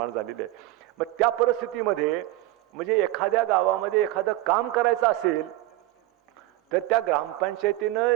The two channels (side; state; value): left; quieter; 16.9 dB